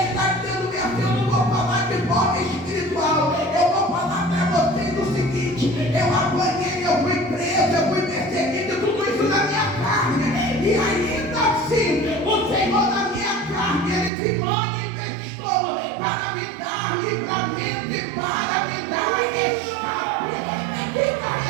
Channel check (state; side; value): drops out; left; at 14.1 s